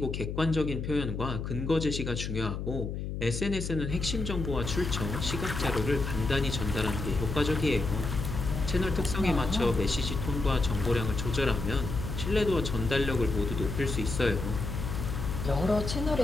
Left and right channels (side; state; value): left; noise; hum, 4 dB below the sound